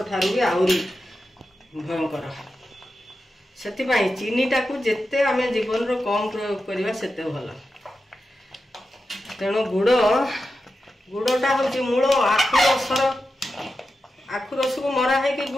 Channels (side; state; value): both; normal; correlation 0.90